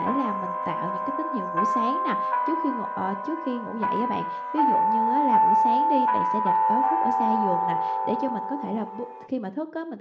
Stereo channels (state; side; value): identical; both; correlation 1.00